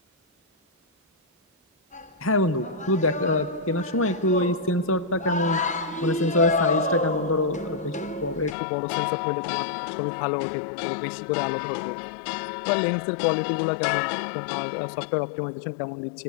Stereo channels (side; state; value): right; drops out; at 8.6 s